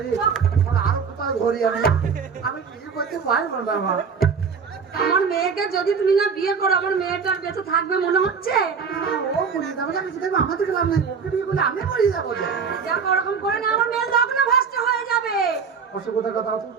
আরো কোথায় ধরি আমি বিয়ে করতে পারবো না মা। আমার মেয়েকে যদি তুমি না বিয়ে করো আমার মেয়েটার বেঁচে থাকবে মনে হচ্ছে? ও মরে যাবে, আমি কিছু দেবো আমাদের গেলাম না, ওকে বিয়ে করলে আমি মরে যাবো যে। দেখো ওরকম করে না আমার মেয়ে লগ্ন ভ্রষ্ট হয়ে যাবে। অসুবিধার কথা তো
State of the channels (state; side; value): quieter; left; 5.9 dB